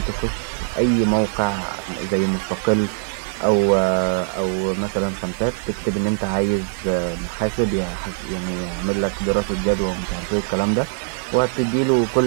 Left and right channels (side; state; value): left; silent; digital silence